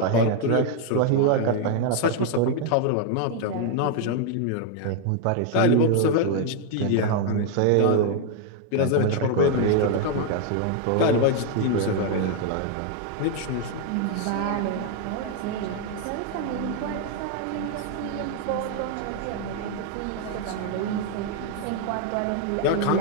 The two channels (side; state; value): both; different; correlation 0.00